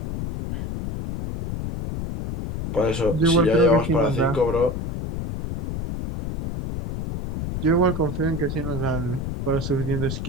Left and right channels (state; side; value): noise; left; rumble, 5 dB below the sound